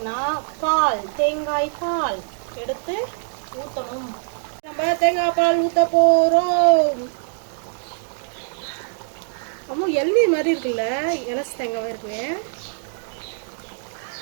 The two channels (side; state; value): left; silent; digital silence